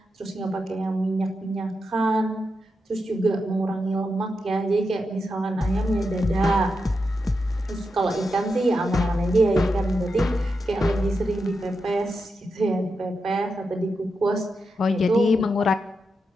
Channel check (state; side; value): normal; both; correlation 0.87